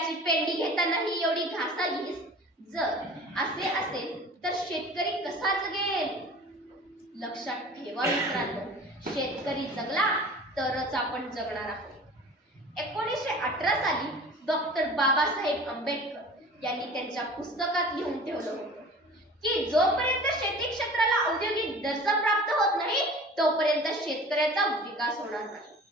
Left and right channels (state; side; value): normal; both; correlation 0.42